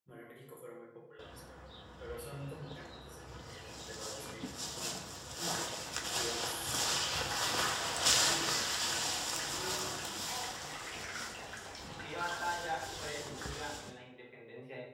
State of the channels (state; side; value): identical; both; correlation 1.00